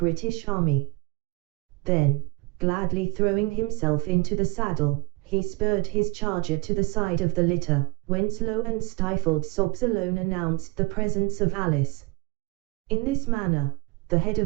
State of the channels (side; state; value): left; quieter; 24.2 dB